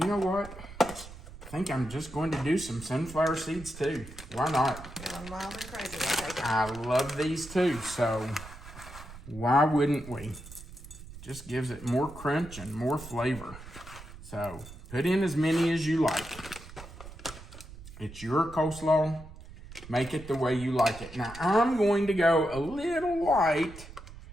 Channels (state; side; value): noise; right; rumble, 15 dB below the sound